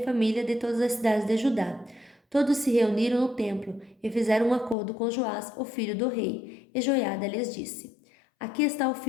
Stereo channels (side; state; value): right; drops out; at 4.8 s